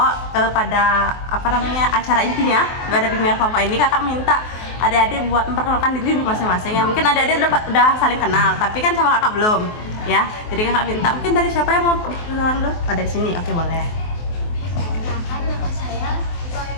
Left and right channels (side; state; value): right; late; 23 ms